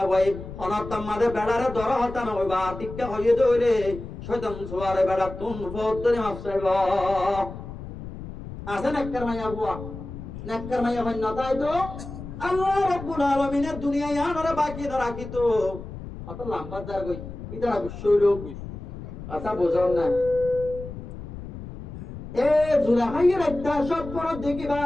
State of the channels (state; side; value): noise; left; rumble, 11 dB below the sound